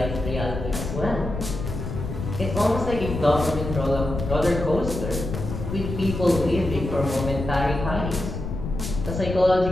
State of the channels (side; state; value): left; noise; rumble, 5 dB below the sound